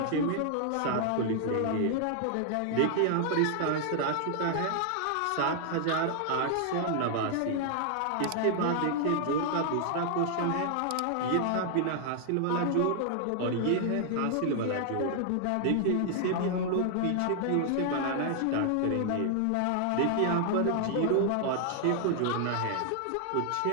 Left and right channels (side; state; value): both; different; correlation 0.00